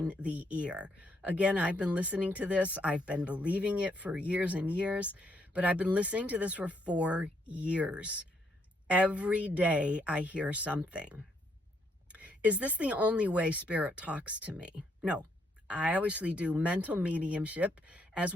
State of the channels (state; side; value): normal; both; correlation 0.74